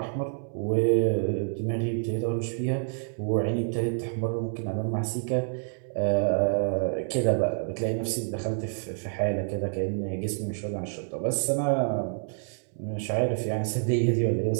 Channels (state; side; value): silent; left; 59 dB below the other